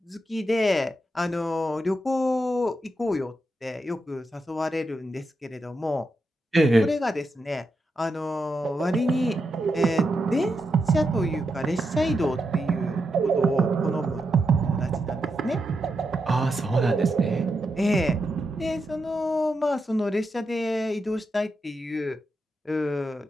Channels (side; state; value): both; normal; correlation 0.85